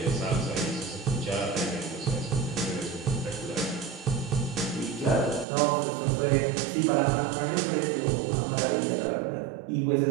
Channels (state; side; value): drops out; left; at 5.5 s